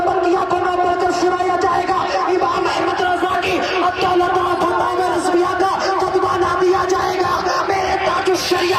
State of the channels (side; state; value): both; identical; correlation 1.00